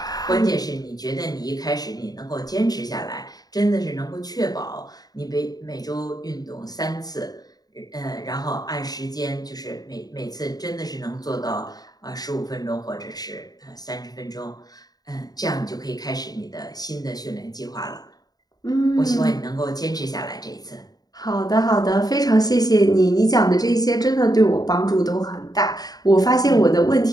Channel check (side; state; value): right; late; 0.19 ms